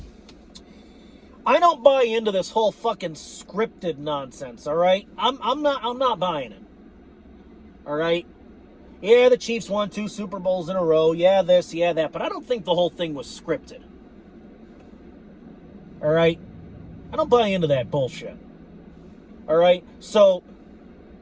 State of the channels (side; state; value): both; identical; correlation 1.00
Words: I don't buy into this whole fucking scripted nonsense, all right? I'm not buying it. All right? Yeah, the Chiefs won 2 Super Bowls in a row. Yeah, this, yeah, that. But I don't think the whole thing was scripted. All right? I don't buy into that bullshit. All right? So,